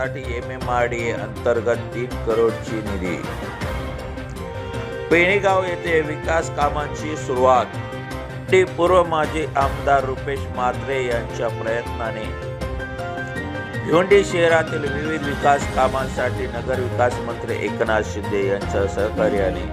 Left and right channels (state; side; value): identical; both; correlation 1.00